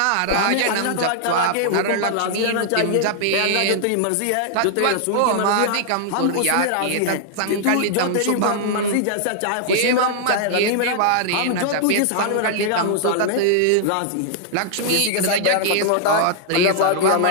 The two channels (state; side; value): different; both; correlation -0.01